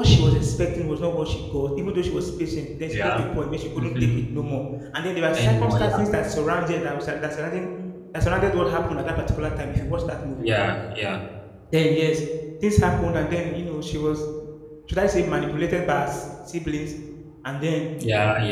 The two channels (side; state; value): both; identical; correlation 1.00